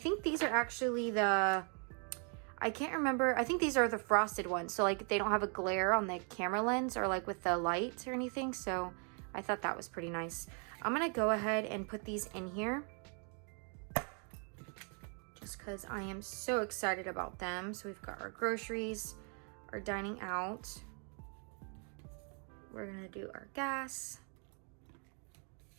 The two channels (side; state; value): left; quieter; 39.8 dB